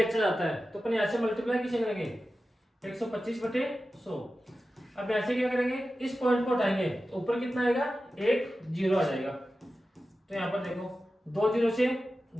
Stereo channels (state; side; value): normal; both; correlation 0.93